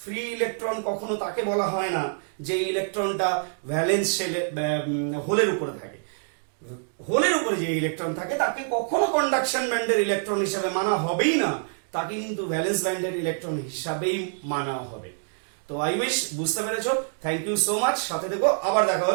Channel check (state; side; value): silent; left; digital silence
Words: ফ্রি ইলেকট্রন কখনো তাকে বলা হয় না যে ইলেকট্রনটা ভ্যালেন্স হোলের উপরে থাকে। হোলের উপরে যে ইলেকট্রন থাকে তাকে কখনো কন্ডাকশন ব্যান্ডের ইলেকট্রন হিসাবে মানা হবেই না, তাকে কিন্তু ভ্যালেন্স ব্যান্ডের ইলেকট্রন হিসাবেই মানা হবে। তো আই উইশ বুঝতে পেরেছো। থ্যাংক ইউ সো মাচ, সাথে থেকো, আবার দেখা